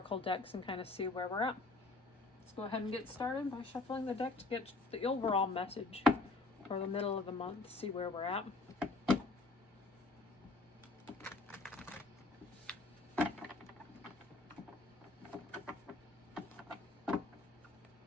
decks and kind of see where we're at. Let's go ahead and get started by shuffling the deck to get the overall message for the middle of the month, see where we're at.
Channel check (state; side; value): quieter; right; 3.3 dB